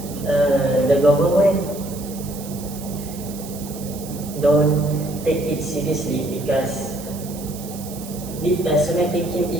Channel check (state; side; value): noise; right; hiss, 14 dB below the sound